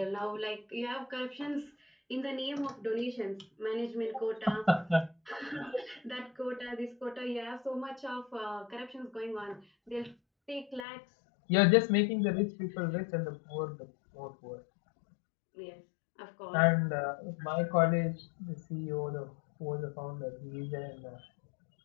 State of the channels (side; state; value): right; drops out; at 10.9 s